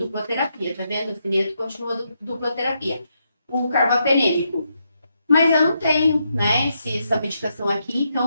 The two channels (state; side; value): inverted; both; correlation -0.81